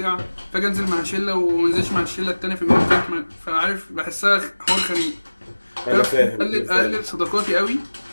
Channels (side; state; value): both; inverted; correlation -1.00